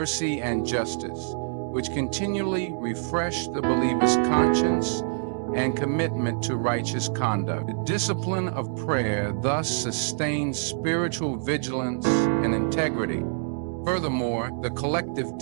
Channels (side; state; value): left; silent; digital silence